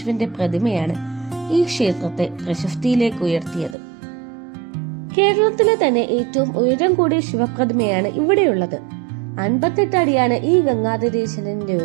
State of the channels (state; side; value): drops out; left; at 3.8 s